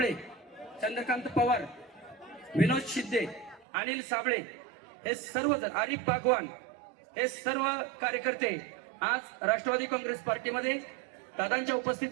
चंद्रकांत पवार, विनोद शिंदे, अनिल साबळे हे सर्वजण, आरिफ बागवान हे सर्व कार्यकर्ते आज राष्ट्रवादी काँग्रेस पार्टीमध्ये दादांच्या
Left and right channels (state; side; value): drops out; left; at 3.7 s